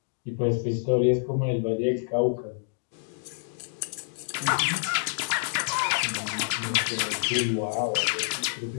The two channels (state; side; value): silent; right; digital silence